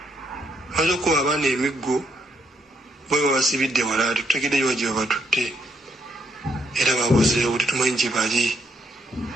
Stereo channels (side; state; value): both; normal; correlation 0.74